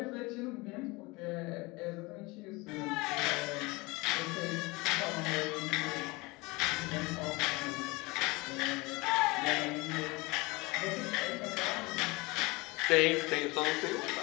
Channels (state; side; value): quieter; right; 24.1 dB